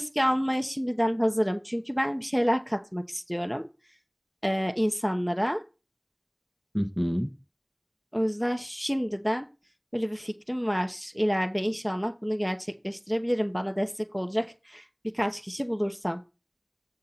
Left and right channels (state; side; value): identical; both; correlation 1.00